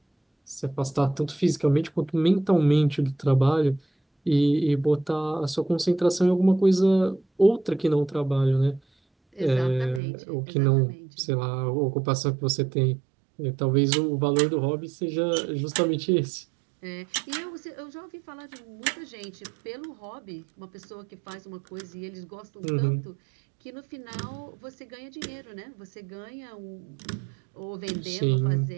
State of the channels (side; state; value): left; drops out; at 10.0 s